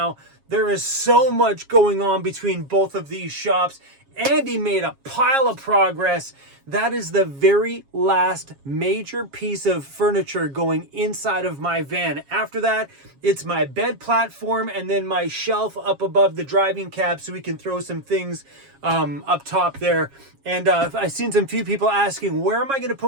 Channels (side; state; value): left; late; 7.3 ms